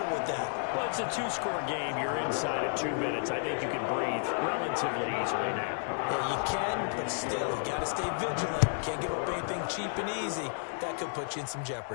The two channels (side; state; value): right; silent; digital silence